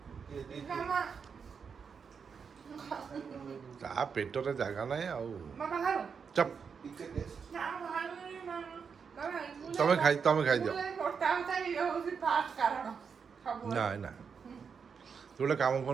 ତା ପେଟରେ ଜାଗା ନାହିଁ ଆଉ ଚପ ତମେ ଖାଇଦିଅ ନାଇଁ ନା ତୁ ଗୋଟେ କାମ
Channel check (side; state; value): left; quieter; 6.1 dB